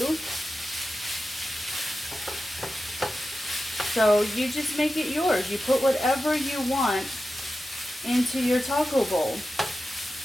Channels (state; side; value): normal; both; correlation 0.92